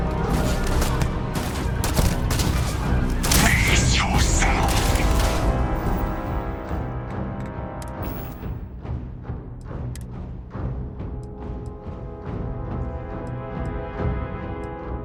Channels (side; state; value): both; identical; correlation 1.00